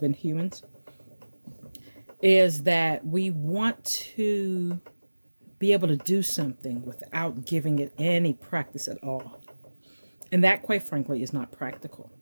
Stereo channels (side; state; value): both; inverted; correlation -1.00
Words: humans. Is that we want to be able to do something without giving it any practice at all. And that, quite frankly, is not practical.